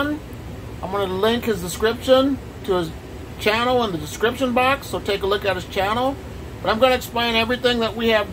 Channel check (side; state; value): both; identical; correlation 1.00